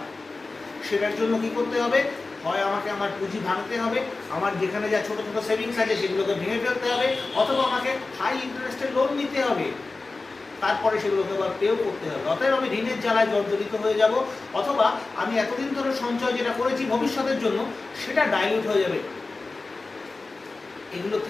সেটার জন্য কি করতে হবে? হয় আমাকে আমার পুঁজি ভাঙতে হবে, আমার যেখানে যা ছোটো ছোটো সেভিংস আছে সেগুলোকে ভেঙে ফেলতে হবে, অথবা আমাকে হাই ইন্টারেস্টের লোন নিতে হবে, তারপরে সেগুলোকে আবার পেও করতে হবে। অতএব আমি ঋণের জ্বালায় জর্জরিত হয়ে যাব, অথবা আমি এতদিন ধরে সঞ্চয় যেটা করেছি ভবিষ্যতের জন্য সেটা ডাইলিউট হয়ে যাবে। এগুলো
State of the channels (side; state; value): right; quieter; 3.6 dB